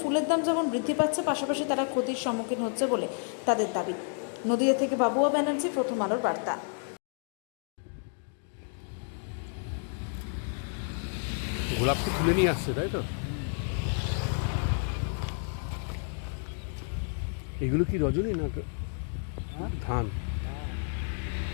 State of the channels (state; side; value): silent; right; 57 dB below the other